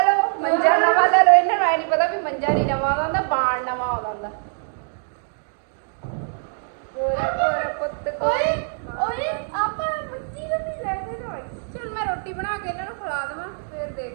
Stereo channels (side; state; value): left; silent; digital silence